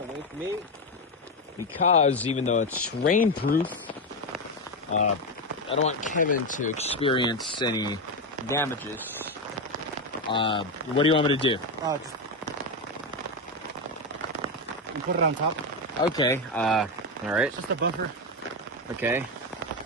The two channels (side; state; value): both; normal; correlation 0.11